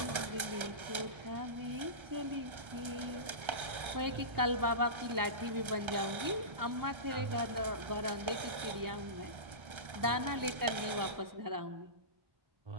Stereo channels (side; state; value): left; late; 1.3 ms